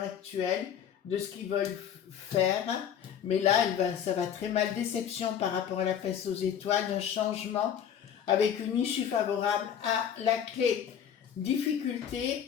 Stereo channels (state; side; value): quieter; right; 8.9 dB